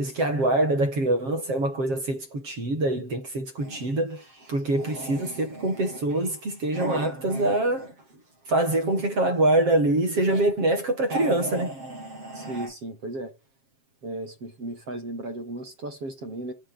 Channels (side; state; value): left; late; 7.5 ms